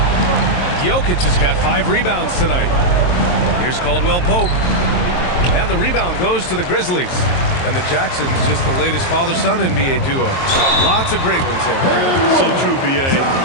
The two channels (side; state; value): right; late; 22 ms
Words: Jokic has got 5 rebounds tonight. Here's Caldwell Pope. And the rebound goes to the Grizzlies. And the Jacksons, just the latest father-son NBA duo. Lots of great ones there, Fred. So true, B.A.